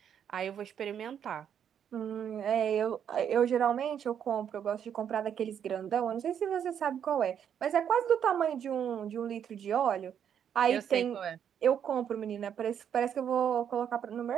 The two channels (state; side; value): quieter; left; 8.7 dB